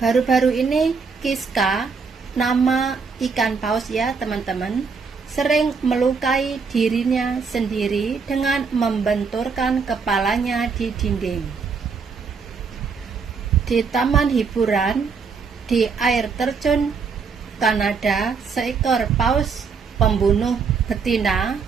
ini Kiska, nama ikan paus ya teman-teman, sering melukai dirinya sendiri dengan membenturkan kepalanya di dinding. Di taman hiburan di air terjun Kanada, seekor paus pembunuh betina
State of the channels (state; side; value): quieter; left; 5.3 dB